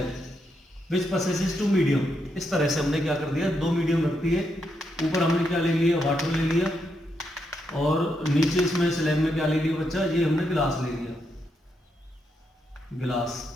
which possesses two medium. इस तरह से हमने क्या कर दिया, दो मीडियम रखती है। ऊपर हमने क्या ले लिया, वाटर ले लिया, और नीचे इसमें स्लैब में क्या ले लिया बच्चा, ये हमने गिलास ले लिया, गिलास।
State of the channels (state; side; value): normal; both; correlation 0.81